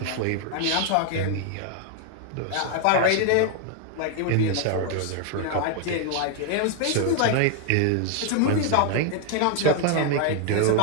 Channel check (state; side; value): different; both; correlation 0.00